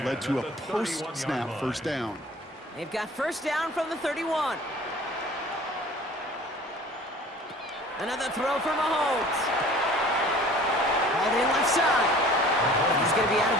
led to a post-snap 1st down. They've got 1st down from the 31. Another throw for Mahomes. Hauled in left side. He's going to be out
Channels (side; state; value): both; normal; correlation 0.47